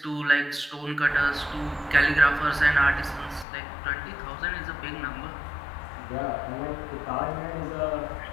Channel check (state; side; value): drops out; right; at 3.5 s